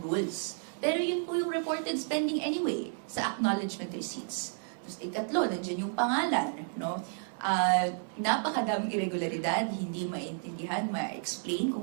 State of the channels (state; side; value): silent; left; digital silence